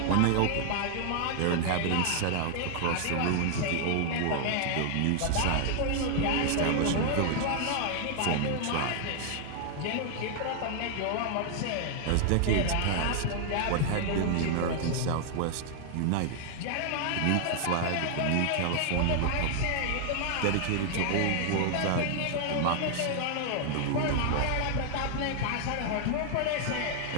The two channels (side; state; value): both; different; correlation 0.00